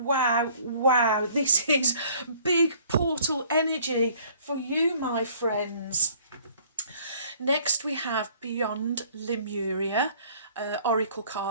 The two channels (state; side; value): inverted; both; correlation -0.56